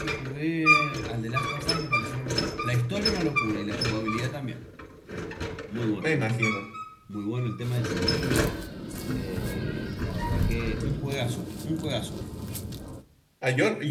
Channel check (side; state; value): both; identical; correlation 1.00